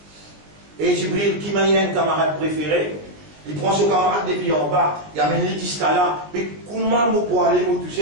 Et Jibril, qui m'a un camarade préféré, il prend son camarade depuis en bas, il amène les jusqu'à là, mais comment moi pour aller me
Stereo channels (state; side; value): late; left; 19 ms